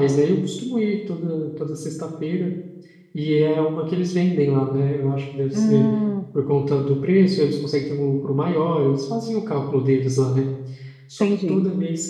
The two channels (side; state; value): both; identical; correlation 1.00